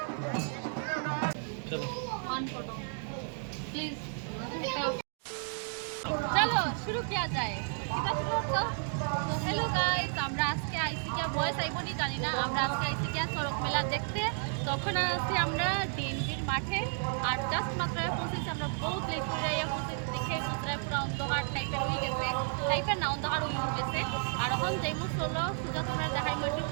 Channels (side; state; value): left; silent; 56 dB below the other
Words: चलो शुरू किया जाए तो हेलो गाइस আমরা আজকে আইসি কিয়া বয়স আইবনি জানি না আমরা আজকে আইসি কিয়া সড়ক মেলা দেখতে তখন আসি আমরা ডিএনবির মাঠে আর জাস্ট মাত্র পৌঁছেছি আমরা বহুত লেট করে আইয়া পৌঁছেছি দেখে পুরো পুরো অন্ধকার টাইপের হয়ে গেছে টাইপের না অন্ধকার হয়ে গেছে আর এখন যাইমু চলো সুজা তোমরা দেখাইমু একটু